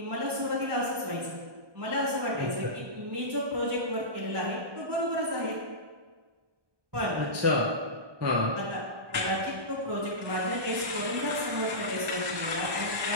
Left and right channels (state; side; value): late; left; 1.2 ms